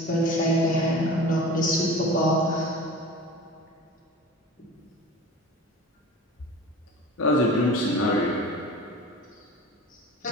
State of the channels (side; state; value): both; normal; correlation 0.37